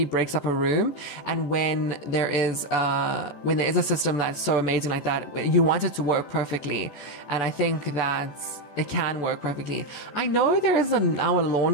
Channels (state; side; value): late; right; 14 ms